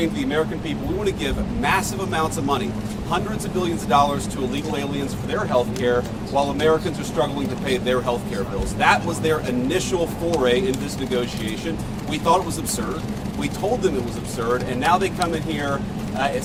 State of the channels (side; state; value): both; identical; correlation 1.00